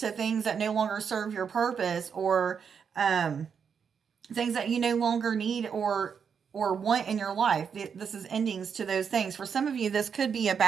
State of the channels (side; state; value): left; quieter; 6.8 dB